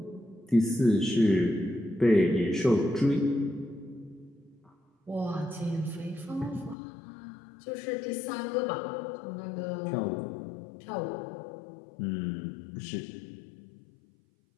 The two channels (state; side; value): drops out; right; at 6.8 s